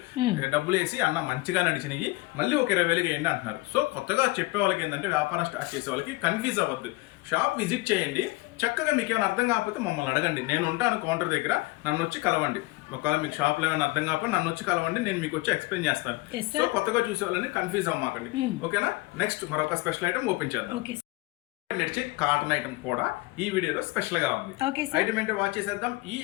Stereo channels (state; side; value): quieter; right; 22.1 dB